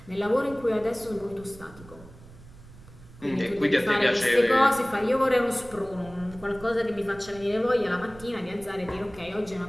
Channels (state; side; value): noise; right; rumble, 20 dB below the sound